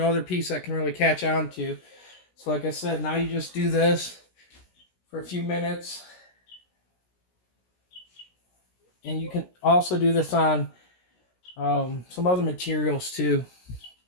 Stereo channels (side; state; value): right; late; 16 ms